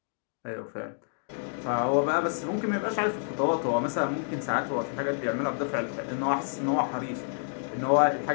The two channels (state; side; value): silent; right; digital silence